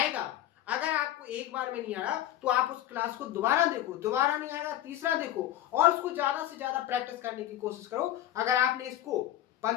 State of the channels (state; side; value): quieter; right; 13.0 dB